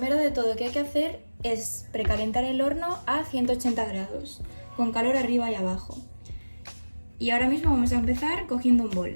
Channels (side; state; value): both; inverted; correlation -1.00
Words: de todo que hay que hacer es precalentar el horno a 180 grados, con calor arriba y abajo. Y ahora mismo vamos a empezar cogiendo un